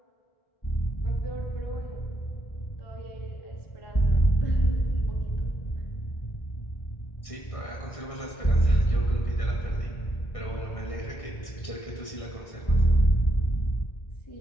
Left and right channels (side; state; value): right; late; 1.6 ms